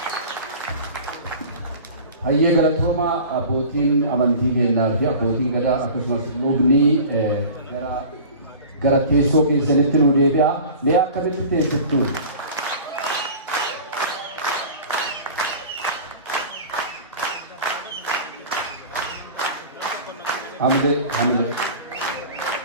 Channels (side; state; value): both; inverted; correlation -0.39